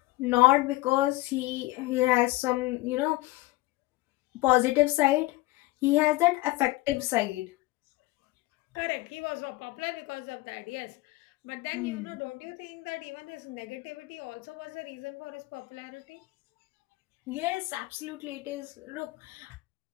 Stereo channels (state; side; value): quieter; right; 20.1 dB